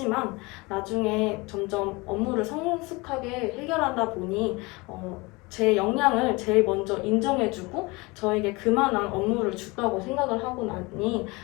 나중에 점점 업무를 성숙하게 해결하다 보니 제 역량을 제일 먼저 인정해주고 저에게 그만한 업무를 줬다고 생각을 하고 나니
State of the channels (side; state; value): right; quieter; 24.9 dB